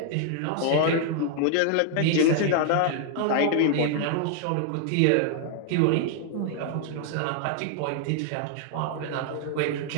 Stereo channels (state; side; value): different; both; correlation 0.00